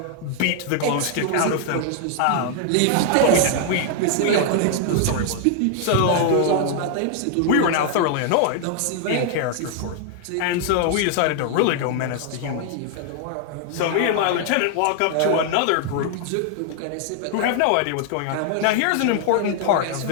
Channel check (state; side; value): different; both; correlation 0.00